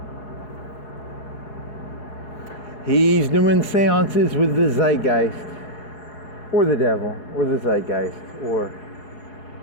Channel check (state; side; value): late; right; 4.7 ms